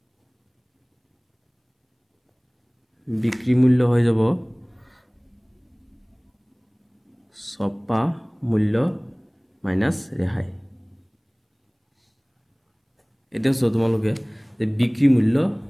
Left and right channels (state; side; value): identical; both; correlation 1.00